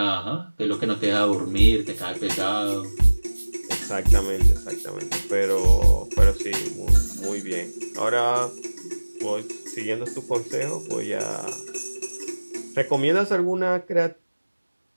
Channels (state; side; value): inverted; both; correlation -1.00